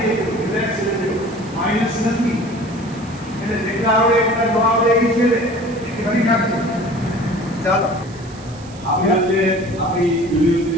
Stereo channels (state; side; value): noise; right; hiss, 22 dB below the sound